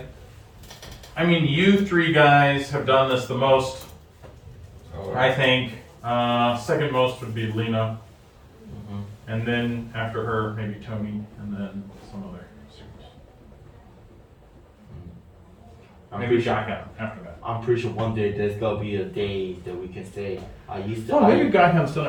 I mean, you three guys have done this the most, Oh, I think. Second most would be Lena, and then after her, maybe Tony, and then some other students. Maybe Shotgun after that. I'm pretty sure one day there's gonna be a day that we can say I used to. Oh, maybe Guyham's done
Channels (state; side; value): identical; both; correlation 1.00